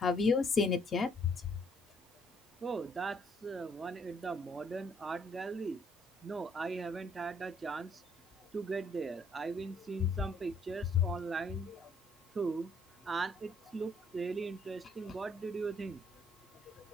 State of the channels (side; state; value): both; normal; correlation 0.67